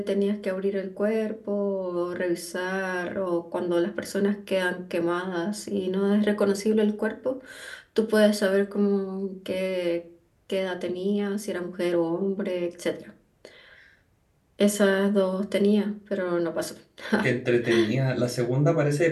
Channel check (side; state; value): both; identical; correlation 1.00